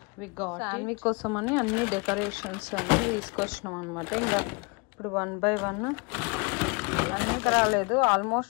we got. Sanvi kosamani anni decorations anni తీసుకొచ్చినాం అన్నమాట. ఇంకా ఇప్పుడు 1 by 1 అన్నీ రాలేదు.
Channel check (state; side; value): quieter; right; 29.7 dB